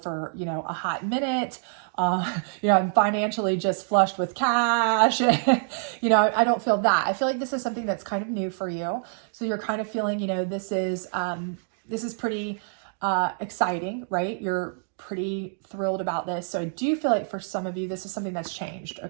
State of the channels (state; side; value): silent; left; digital silence